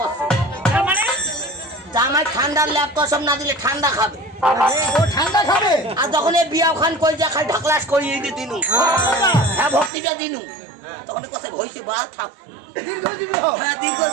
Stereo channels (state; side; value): drops out; left; at 9.9 s